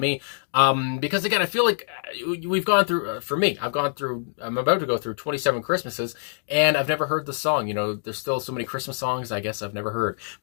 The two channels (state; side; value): silent; right; digital silence